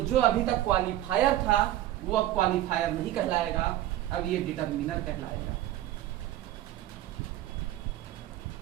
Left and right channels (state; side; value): quieter; left; 13.9 dB